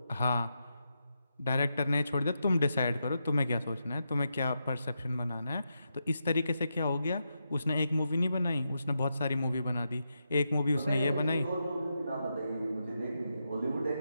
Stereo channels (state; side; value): inverted; both; correlation -0.85